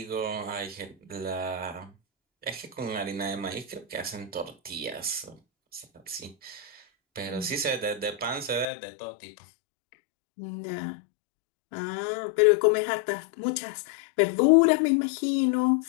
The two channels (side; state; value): right; drops out; at 8.7 s